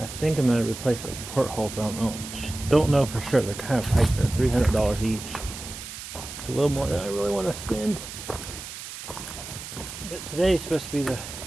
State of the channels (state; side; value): noise; right; hiss, 11 dB below the sound